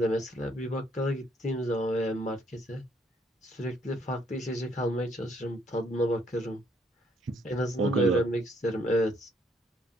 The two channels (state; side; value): normal; both; correlation 0.68